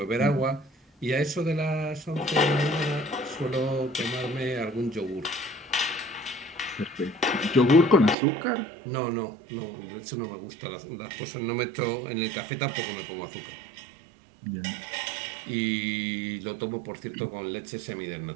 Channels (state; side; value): drops out; left; at 8.2 s